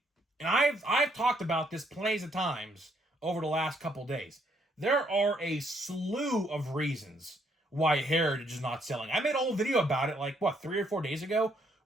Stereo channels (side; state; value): both; normal; correlation 0.70